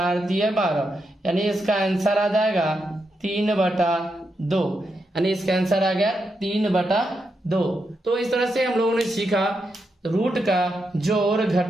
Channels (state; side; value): normal; both; correlation 0.84